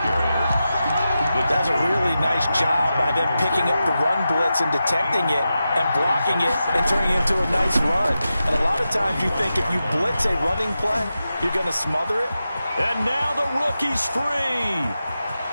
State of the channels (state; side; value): inverted; both; correlation -0.91